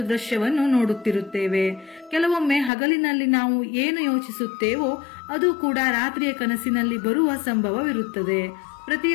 ದೃಶ್ಯವನ್ನು ನೋಡುತ್ತಿರುತ್ತೇವೆ. ಕೆಲವೊಮ್ಮೆ ಹಗಲಿನಲ್ಲಿ ನಾವು ಏನು ಯೋಚಿಸುತ್ತೇವೋ ಅದು ಕೂಡ ರಾತ್ರಿಯ ಕನಸಿನಲ್ಲಿ ಬರುವ ಸಂಭವವಿರುತ್ತದೆ.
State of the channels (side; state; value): right; drops out; at 2.7 s